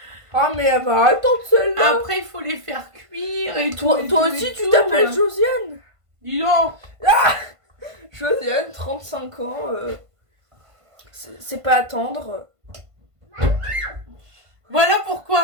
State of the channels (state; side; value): late; left; 1.5 ms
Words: Ah, mais elle va attendre celle-là. Après, il faut les faire cuire et Toi, tout. toi et tout, aussi, et tu tout. t'appelles Josiane. Dis donc. Josiane, 35 ans. C'est pas attendre. Voilà